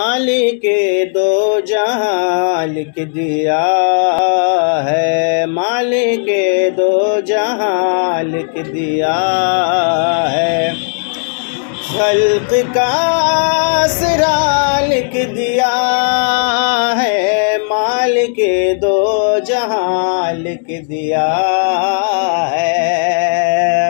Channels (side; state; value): right; silent; digital silence